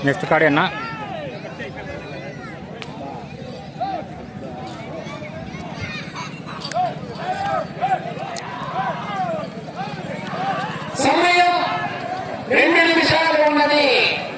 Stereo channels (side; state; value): both; identical; correlation 1.00